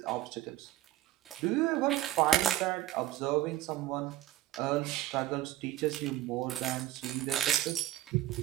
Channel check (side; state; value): left; quieter; 14.3 dB